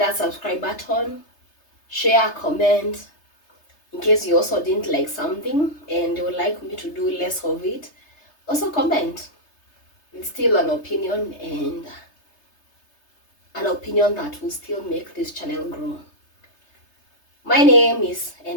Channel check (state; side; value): late; right; 3.3 ms